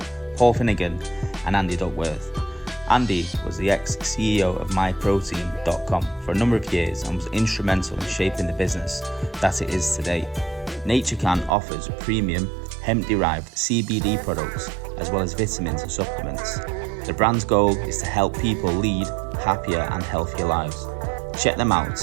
Paul Finnegan and Andy Duckworth. Andy was the ex-CEO of MyProtein.com for a number of years and was instrumental in shaping the business that it is today. NatureCan offers premium hemp-derived CBD products as well as vitamins and supplements. The brand's goal is to help people lead happier and healthier lives. Check them out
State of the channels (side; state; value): left; drops out; at 11.6 s